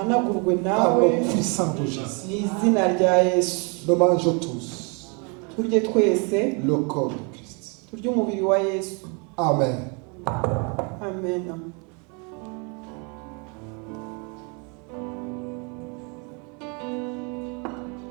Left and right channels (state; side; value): quieter; left; 34.0 dB